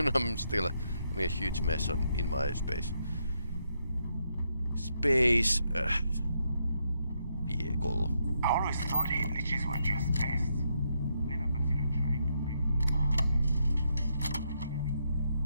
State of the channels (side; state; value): both; inverted; correlation -0.79